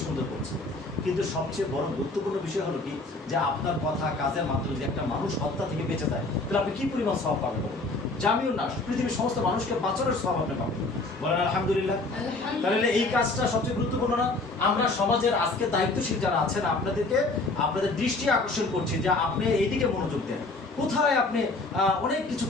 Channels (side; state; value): right; quieter; 3.2 dB